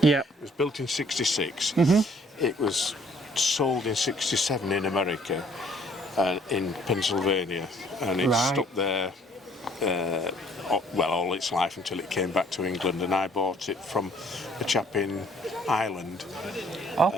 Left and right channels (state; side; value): normal; both; correlation 0.61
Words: Yeah. It was built in '66. It was sold in '67 in America, in Pennsylvania, and it stuck there. Well, all its life until it came back to England, and I bought it from a chap in Ireland. Okay.